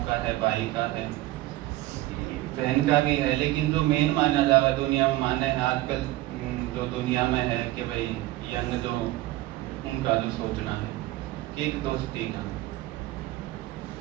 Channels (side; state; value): left; quieter; 17.4 dB